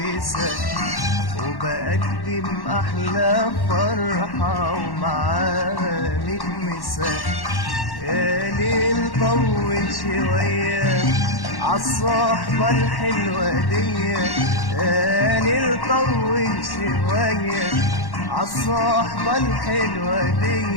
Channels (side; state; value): right; late; 1.1 ms